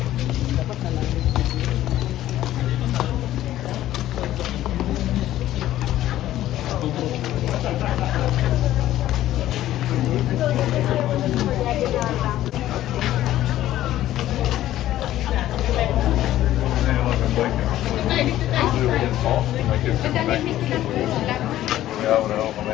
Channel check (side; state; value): right; quieter; 13.6 dB